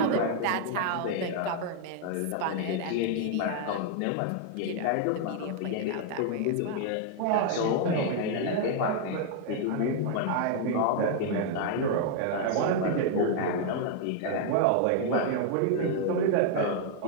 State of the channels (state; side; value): different; both; correlation 0.00